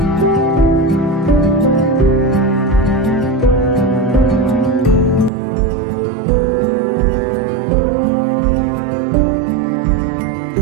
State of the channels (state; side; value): drops out; left; at 5.3 s